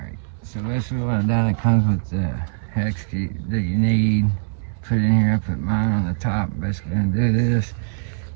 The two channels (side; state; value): left; silent; digital silence